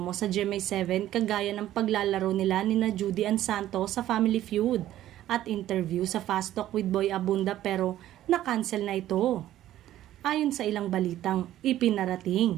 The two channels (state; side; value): quieter; left; 13.2 dB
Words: sa GMA7 kagaya ng paglalaro nila ni Judy Ann Santos sa Family Feud at interview sa Fast Talk with Boy Abunda pero na-cancel na ito. Ayon sa ilang balitang